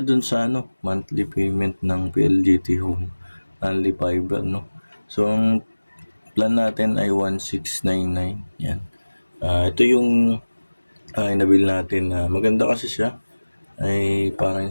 dun sa monthly payment ng PLDT Home, only fiber, no? So ang plan natin ay 1699. Yan. Ito yung inabil natin na maganda kasi siya. Ay parang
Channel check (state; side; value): inverted; both; correlation -1.00